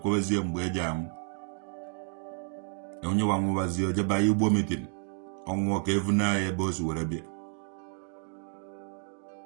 mgbe eji amụ onye wa nwụwazie ojeba Igbo meeting ọnwụọ ka evuna ya ebe o si were bịa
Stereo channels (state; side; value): silent; left; 57 dB below the other